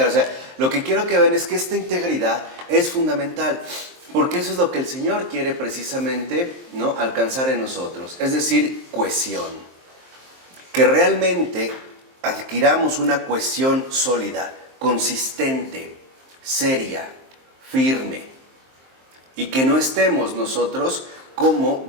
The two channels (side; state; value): left; late; 23 ms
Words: O sea, lo que quiero que vean es que esta integridad es fundamental. Porque eso es lo que el Señor quiere precisamente, ¿no?, alcanzar en nosotros. Es decir, cohesión. Que realmente adquiramos una cohesión sólida, consistente, seria, firme. Y que no estemos nosotros como